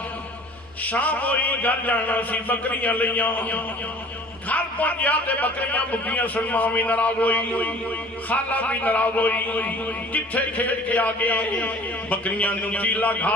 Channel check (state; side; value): normal; both; correlation 0.48